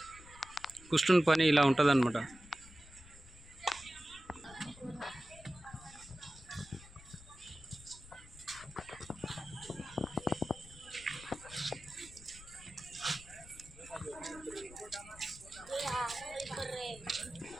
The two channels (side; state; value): left; noise; rumble, 19 dB below the sound